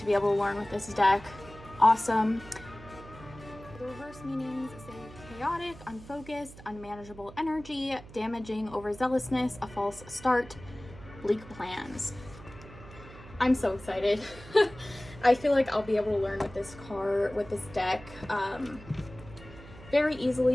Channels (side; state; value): right; noise; hum, 18 dB below the sound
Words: be able to learn with this deck. Awesome. The reverse meanings say chaotic, unfocused, unmanageable energy, damaging overzealousness, a false start, bleak plans. I'm so excited. I feel like I'll be able to learn with this deck very